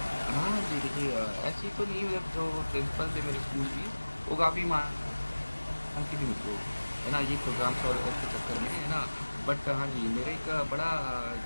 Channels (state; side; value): inverted; both; correlation -1.00